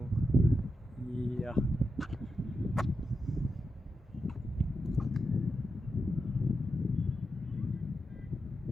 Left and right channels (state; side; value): normal; both; correlation 0.87